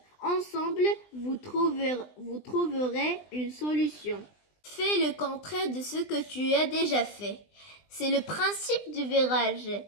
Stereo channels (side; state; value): right; late; 20 ms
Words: Ensemble, vous trouverez une solution. Fais le contraire de ce que tu as déjà fait. C'est le principe du virage